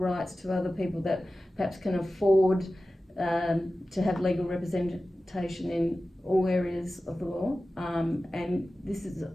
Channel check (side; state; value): both; normal; correlation 0.95